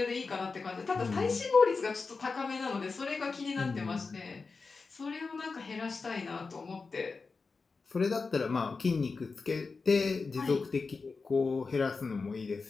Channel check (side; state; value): right; quieter; 4.4 dB